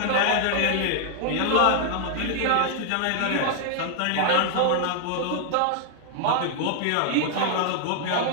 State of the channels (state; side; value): different; both; correlation -0.01